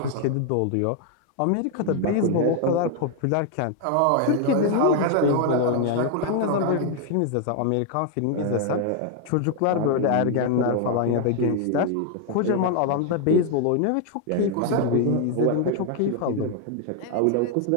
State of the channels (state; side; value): different; both; correlation 0.00